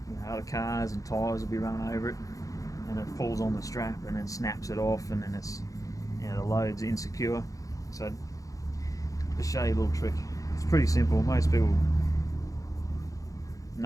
other cars and tyres will be running over it, and it pulls on the strap and then snaps it off, and then it's, you know, the load's insecure. So just show you a little trick. It's pretty simple. Most people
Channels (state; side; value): late; right; 0.16 ms